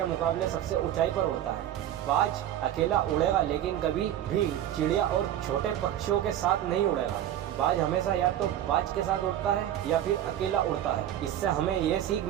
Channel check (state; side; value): quieter; left; 11.7 dB